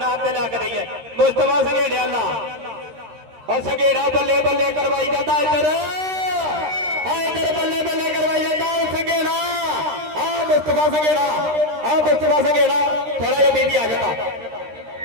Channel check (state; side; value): late; left; 13 ms